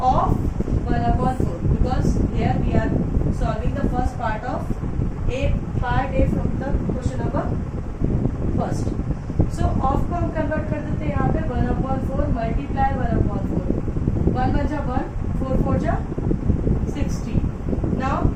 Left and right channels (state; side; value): identical; both; correlation 1.00